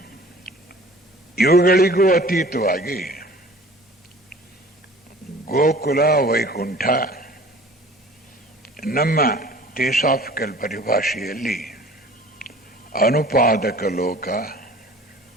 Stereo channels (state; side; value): normal; both; correlation 0.47